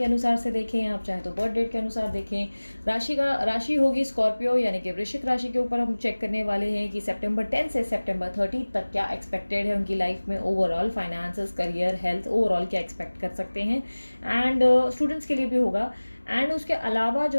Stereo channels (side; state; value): both; inverted; correlation -1.00